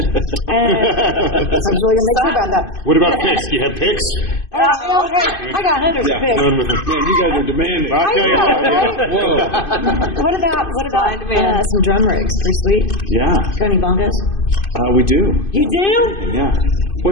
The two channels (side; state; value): right; late; 2.5 ms